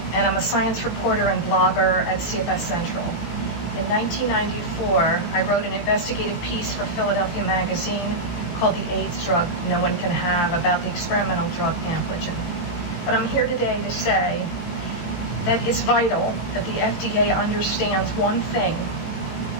and I'm a science reporter and blogger at CFS Central. In 1994, I wrote an investigative piece for Philadelphia Magazine called The AIDS Drug No One Can Have, about the experimental drug Ampligen. But I'm here today to say that it's vital that the FDA understands one thing.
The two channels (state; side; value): late; right; 18 ms